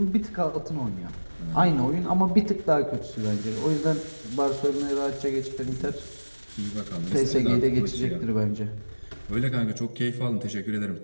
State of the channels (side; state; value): both; inverted; correlation -1.00